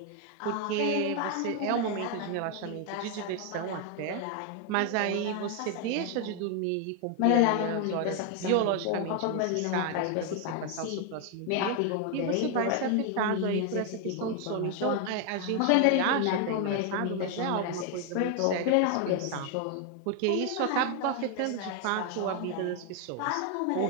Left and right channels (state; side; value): different; both; correlation 0.01